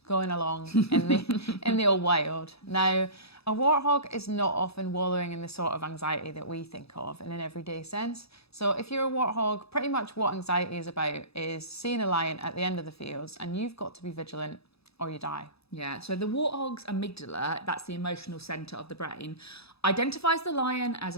going along in the old wild. Now, a warthog is not often wallowing in the sort of anxiety that we think of in an everyday sense. So if you're a warthog, pretty much what anxiety is about is seeing a lion at the end of the fields and you've got to be vigilant or you die. Yeah, so the warthog's amygdala, that's the emotional centre of the brain, identifies the lion as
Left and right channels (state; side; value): late; right; 0.78 ms